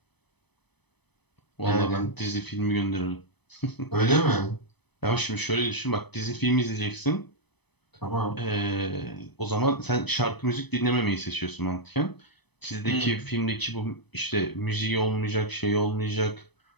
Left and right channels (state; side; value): late; right; 0.99 ms